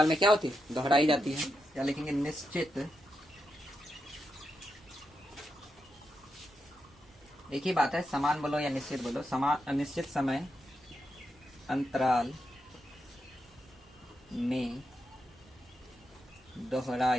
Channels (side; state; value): both; normal; correlation 0.85